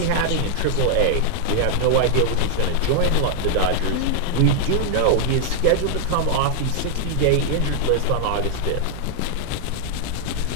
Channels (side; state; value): both; different; correlation -0.01